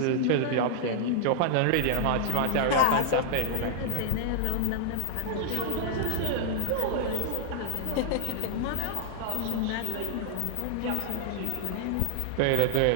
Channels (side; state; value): both; different; correlation 0.00